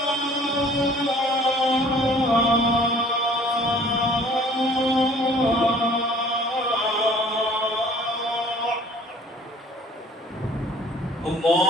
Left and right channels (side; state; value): both; normal; correlation 0.52